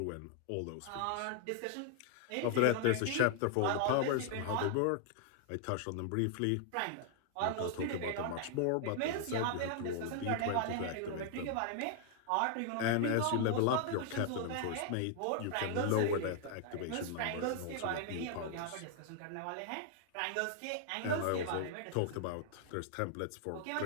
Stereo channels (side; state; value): both; different; correlation 0.00